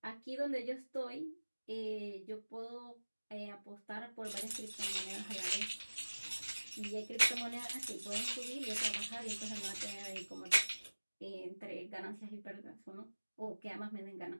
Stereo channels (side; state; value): both; inverted; correlation -1.00